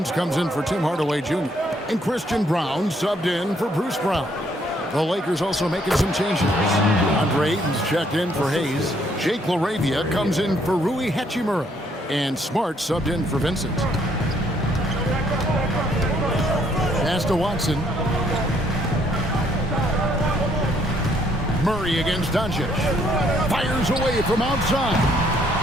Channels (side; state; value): both; normal; correlation 0.68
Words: comes in for Tim Hardaway Jr. And Christian Brown subbed in for Bruce Brown. The Lakers also making some changes. Andre Ayton's checked in for Hayes. Jake LaRavia comes in for Rui Hachimura. And Smart subbed in for Vincent. Pass to Watson. Murray against Doncic. Fires away from outside.